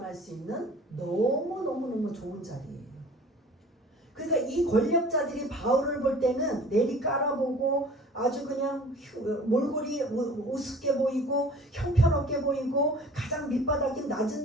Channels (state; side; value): normal; both; correlation 0.46